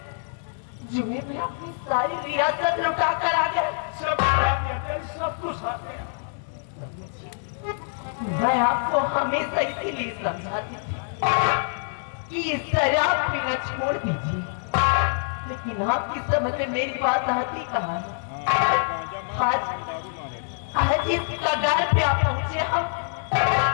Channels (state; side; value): silent; right; digital silence